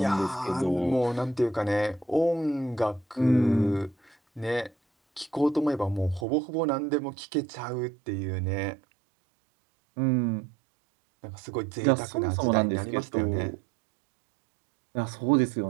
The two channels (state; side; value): drops out; left; at 6.2 s